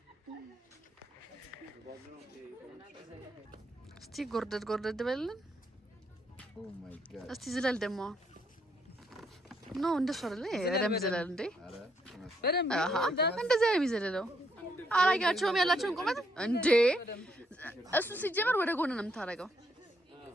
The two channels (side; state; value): both; normal; correlation 0.74